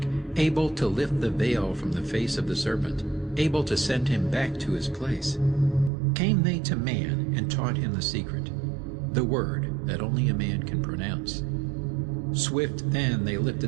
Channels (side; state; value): left; drops out; at 5.9 s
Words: able to lift the veil from the face of the serpent, able to send him back to his place. Came they to man and taught him the secret, the word that only a man can pronounce. Swift then they